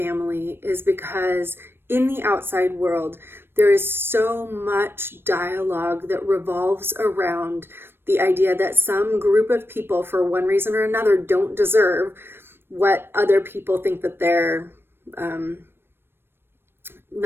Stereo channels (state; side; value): late; left; 0.11 ms